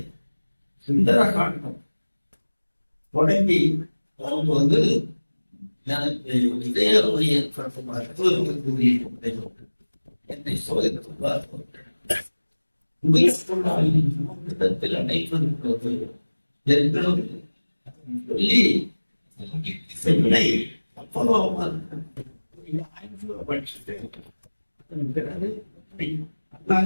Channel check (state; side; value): inverted; both; correlation -1.00